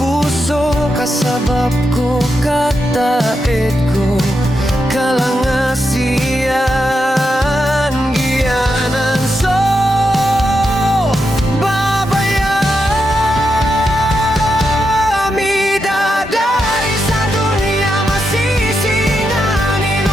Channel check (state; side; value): normal; both; correlation 0.85